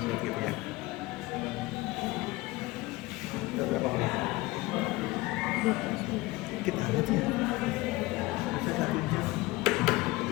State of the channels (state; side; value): quieter; right; 20.5 dB